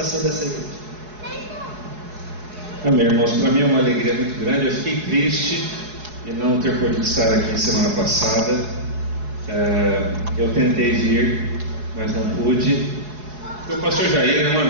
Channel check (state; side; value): late; left; 4.7 ms